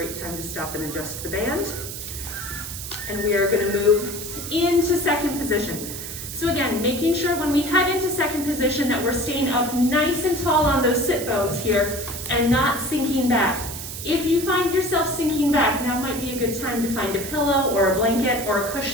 time to stop and adjust the band. And we are gonna move into second position. So again, making sure when we head into second position that we're staying up nice and tall on those sit bones here and not sinking back. If you find yourself sinking back, now might be a good time to find a pillow or a blanket or a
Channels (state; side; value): noise; right; hiss, 8 dB below the sound